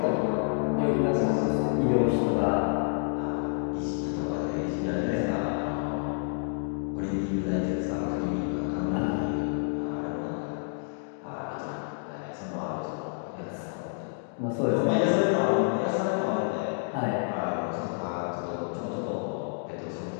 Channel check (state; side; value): silent; right; digital silence